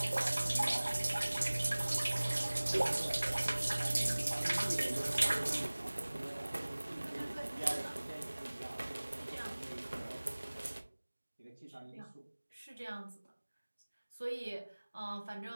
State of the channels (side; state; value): both; inverted; correlation -1.00